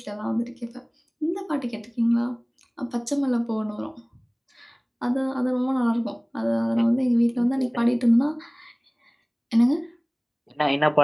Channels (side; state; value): both; identical; correlation 1.00